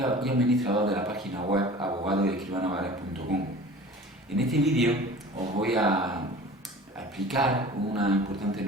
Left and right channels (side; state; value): both; normal; correlation 0.41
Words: de la página web abogadoescribanovares.com. En este vídeo os voy a explicar una importante